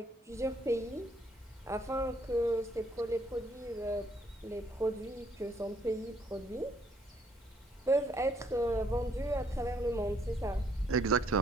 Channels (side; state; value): both; normal; correlation 0.68